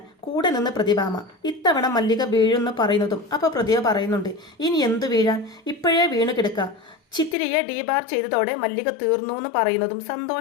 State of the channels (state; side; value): drops out; right; at 7.4 s